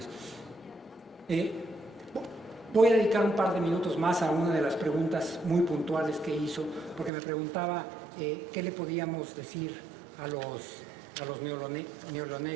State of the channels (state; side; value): drops out; left; at 7.1 s